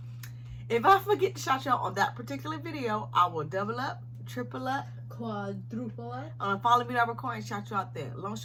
If I forget to shout you out on that particular video, I will double up, triple up, quadruple up. On a follow me that record and shout you out there. Long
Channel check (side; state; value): both; identical; correlation 1.00